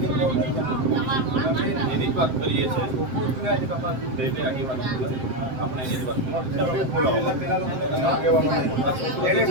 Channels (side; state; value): left; late; 7.7 ms